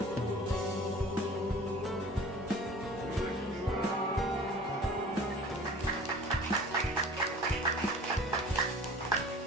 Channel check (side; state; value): both; normal; correlation 0.44